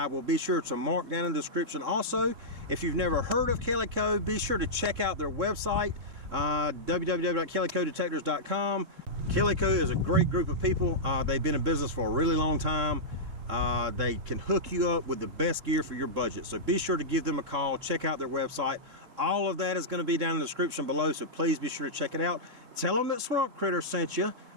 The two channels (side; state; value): left; late; 3.6 ms